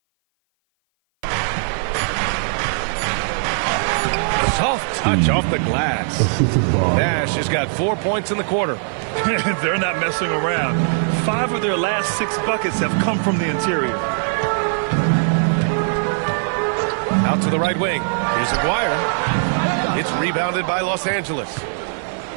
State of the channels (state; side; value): silent; left; 56 dB below the other